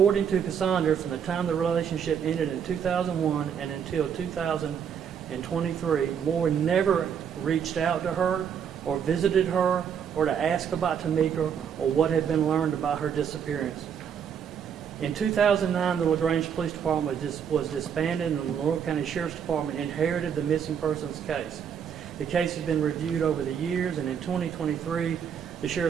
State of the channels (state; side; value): quieter; left; 7.9 dB